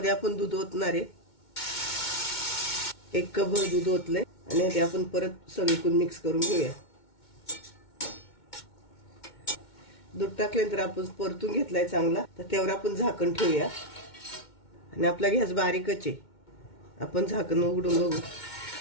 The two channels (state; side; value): late; right; 2.2 ms